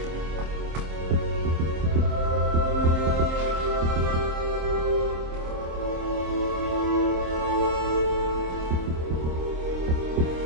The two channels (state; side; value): late; left; 26 ms